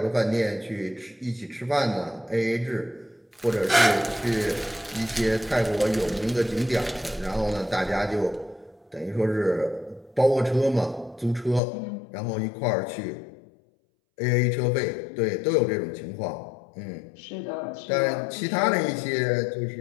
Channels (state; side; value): drops out; right; at 11.6 s